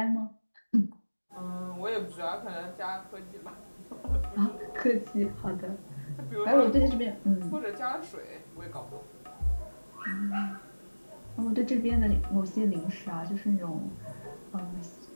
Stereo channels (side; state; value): both; inverted; correlation -1.00